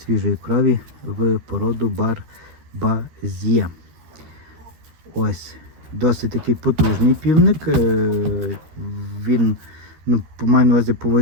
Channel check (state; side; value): late; left; 13 ms